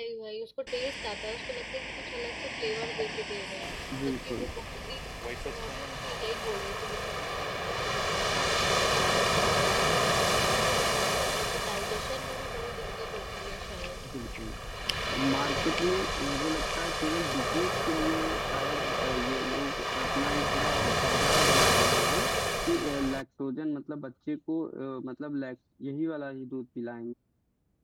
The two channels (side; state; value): both; identical; correlation 1.00